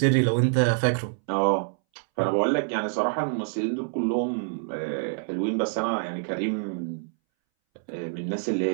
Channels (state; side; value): silent; left; 61 dB below the other